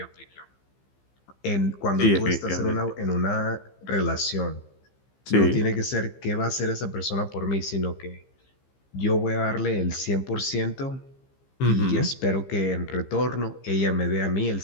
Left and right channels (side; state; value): right; late; 15 ms